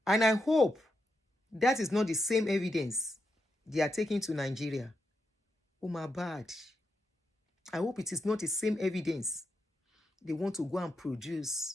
And I hope that is not the same evidence they are taking to Nigeria. Oh, my bad. I hope it is not the same evidence they want to go and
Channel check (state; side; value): normal; both; correlation 0.84